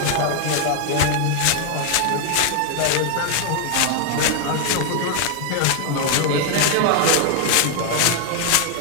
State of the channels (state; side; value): different; both; correlation 0.00